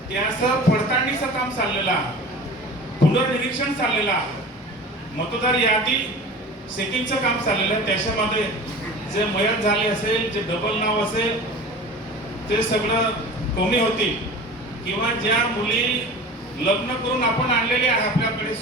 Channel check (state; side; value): normal; both; correlation 0.37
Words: त्याचं पडताळणीचं काम चाललेलं आहे, पुनर्निरीक्षण चाललेलं आहे, मतदार यादी चेकिंगचं काम चाललेलं आहे. त्याच्यामध्ये जे मयत झाले असेल, जे डबल नाव असेल ते सगळं कमी होतील किंवा ज्या मुली लग्न करून आपण आणलेले आहे आपल्याकडे